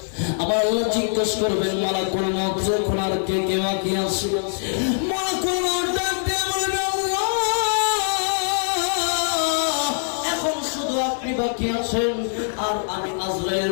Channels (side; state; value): right; silent; 64 dB below the other